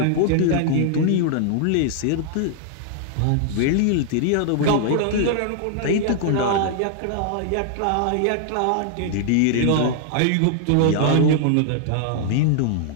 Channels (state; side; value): different; both; correlation 0.00